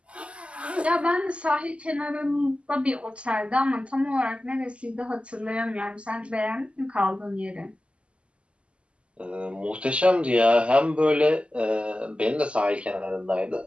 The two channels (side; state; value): left; late; 0.054 ms